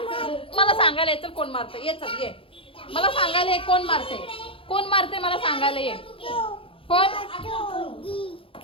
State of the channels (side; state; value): right; late; 0.26 ms